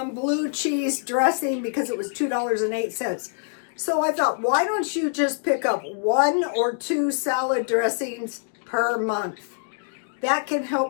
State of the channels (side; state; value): right; silent; digital silence